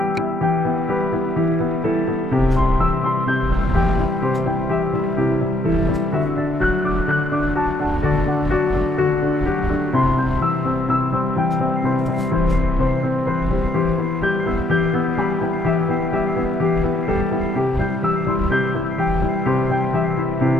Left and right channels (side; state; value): both; normal; correlation 0.71